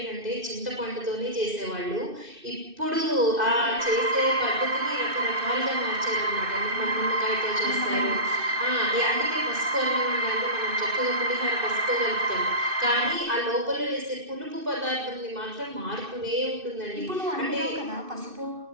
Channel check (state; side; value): late; left; 2.6 ms